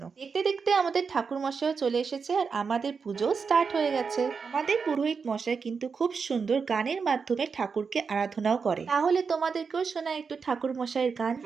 দেখতে দেখতে আমাদের ঠাকুর মশাইও চলে এসেছে আর আমাদের পুজো স্টার্ট হয়ে গেছে। আমাদের পুরোহিত মশাই কিন্তু খুব সুন্দর গানের মাধ্যমে ঠাকুরকে আরাধনাও করে। তাহলে তোমাদেরকেও শোনা একটু ঠাকুর মশাইয়ের গান।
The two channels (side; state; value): left; quieter; 5.4 dB